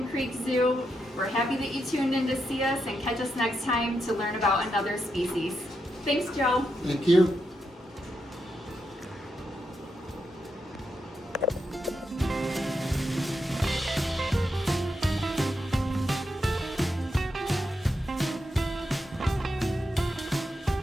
Creek Zoo. We're happy that you tuned in to see us, and catch us next time to learn about another species. Thanks, Joe. thank you.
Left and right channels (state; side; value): normal; both; correlation 0.84